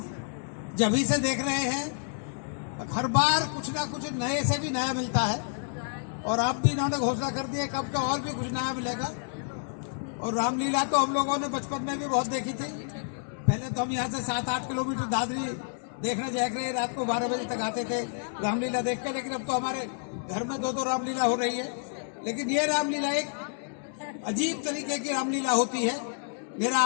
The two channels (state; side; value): silent; right; digital silence